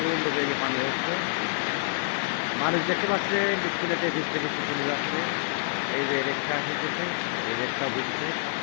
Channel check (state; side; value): silent; right; 60 dB below the other